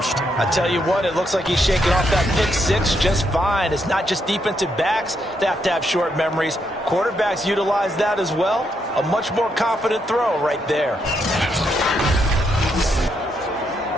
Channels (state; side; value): normal; both; correlation 0.78